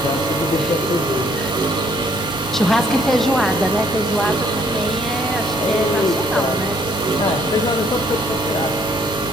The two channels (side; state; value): both; normal; correlation 0.64